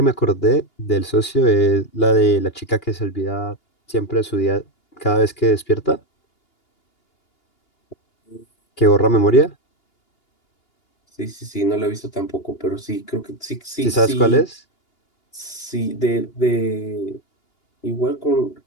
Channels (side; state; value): right; late; 2.8 ms